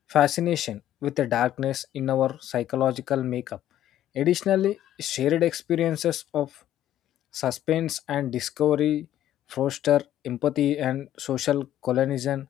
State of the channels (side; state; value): right; quieter; 12.1 dB